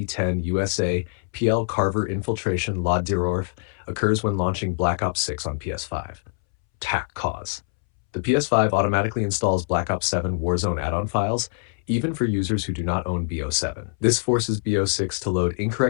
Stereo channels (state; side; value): silent; right; 63 dB below the other